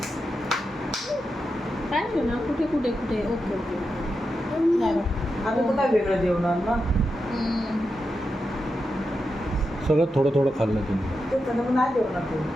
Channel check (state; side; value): normal; both; correlation 0.88